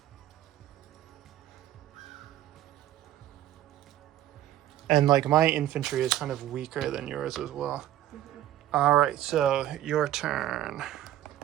And like my infantry is kind of weaker than yours as well. All right, so your turn.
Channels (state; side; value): quieter; left; 12.8 dB